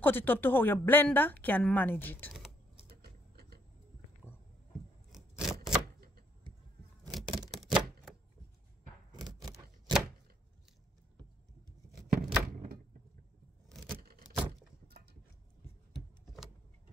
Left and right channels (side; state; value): both; normal; correlation 0.69